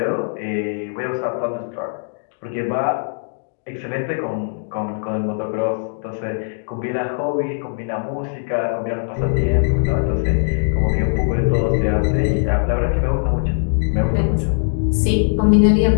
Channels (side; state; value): right; silent; digital silence